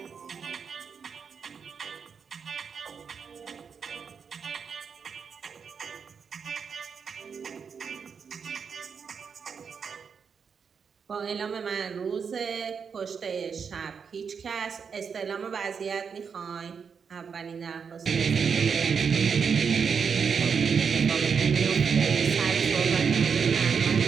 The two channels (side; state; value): left; quieter; 6.3 dB